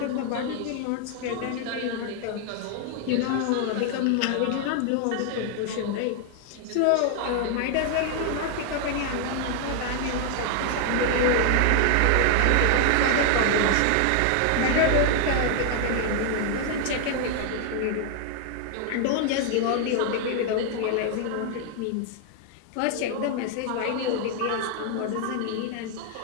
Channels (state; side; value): different; both; correlation 0.00